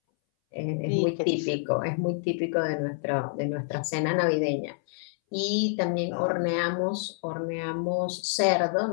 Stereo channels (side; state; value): right; silent; 60 dB below the other